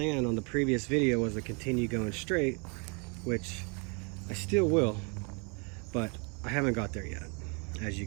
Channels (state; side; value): quieter; left; 34.1 dB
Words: on the previous video was to continue going straight, which I still will, but I haven't got there yet, as you